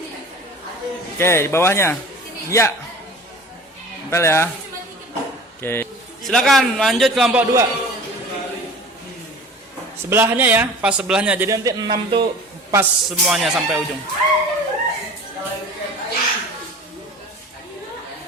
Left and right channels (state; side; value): normal; both; correlation 0.42